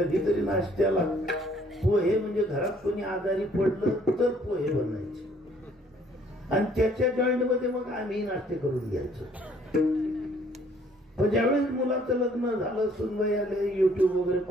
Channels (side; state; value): both; normal; correlation 0.61